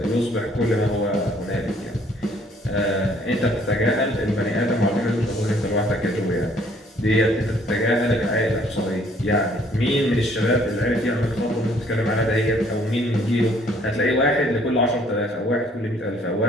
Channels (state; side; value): normal; both; correlation 0.61